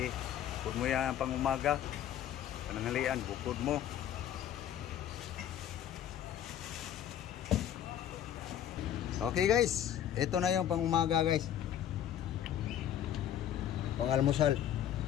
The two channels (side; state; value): right; quieter; 10.5 dB